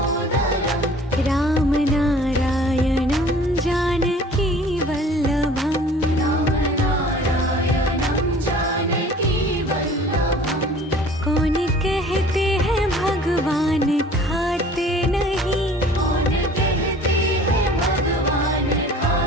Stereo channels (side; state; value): both; normal; correlation 0.48